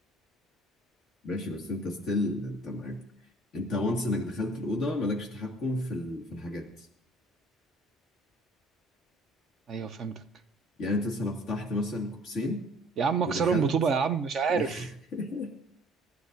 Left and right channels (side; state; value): both; normal; correlation 0.53